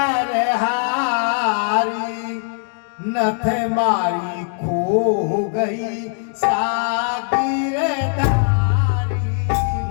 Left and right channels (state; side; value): silent; right; 66 dB below the other